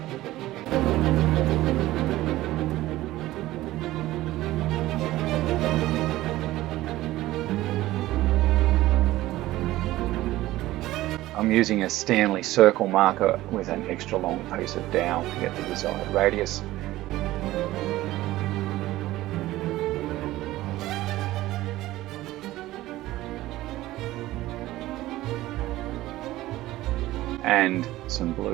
I'm using a Stanley circle marker with an extra long piece of dowel to get the desired radius. And some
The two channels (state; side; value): quieter; left; 16.4 dB